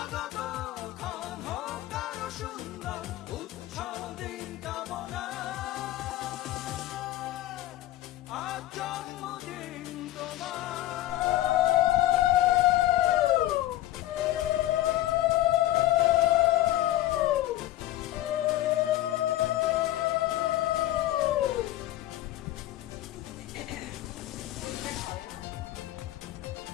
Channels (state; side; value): quieter; right; 14.7 dB